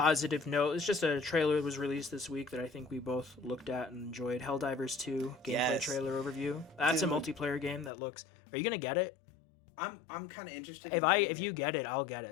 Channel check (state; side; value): drops out; right; at 7.9 s